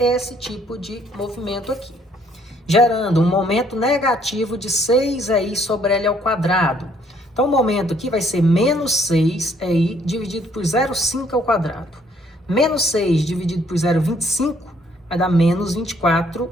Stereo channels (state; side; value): normal; both; correlation 0.65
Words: tipo de movimento aqui, gerando um momento negativo de 6EI sobre L ao quadrado. Então, o momento aqui vai ser menos 6EI dividido por 0,5 ao quadrado. Menos 6 dividido por 0,25 vai dar menos